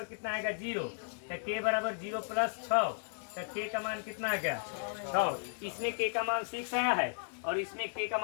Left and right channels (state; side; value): silent; right; 55 dB below the other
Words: कितना आएगा 0, तो k बराबर 0 प्लस 6, तो k का मान कितना आ गया 6। इसमें k का मान 6 आया है और इसमें k का